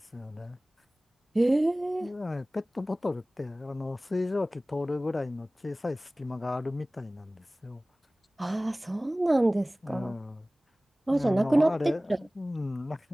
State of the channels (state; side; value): normal; both; correlation 0.98